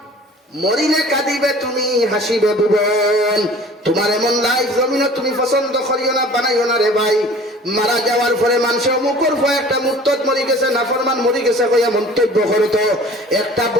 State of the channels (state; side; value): normal; both; correlation 0.46